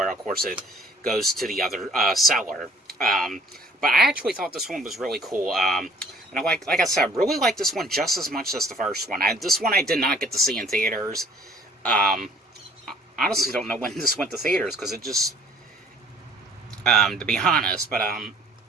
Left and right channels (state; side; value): normal; both; correlation 0.55